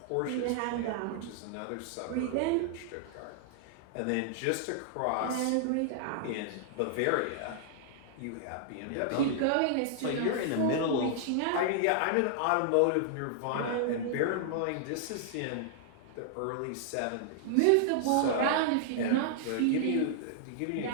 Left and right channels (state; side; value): different; both; correlation -0.01